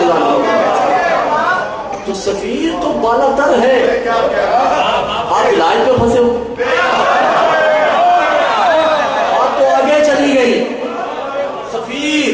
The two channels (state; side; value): identical; both; correlation 1.00